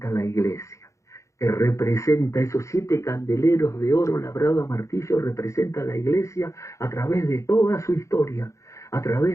la iglesia, que representa esos 7 candeleros de oro labrado a martillo, representa la iglesia a través de toda su historia, a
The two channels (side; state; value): right; late; 0.15 ms